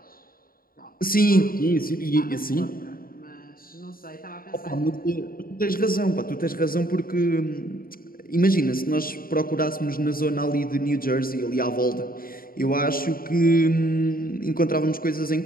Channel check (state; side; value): late; right; 0.42 ms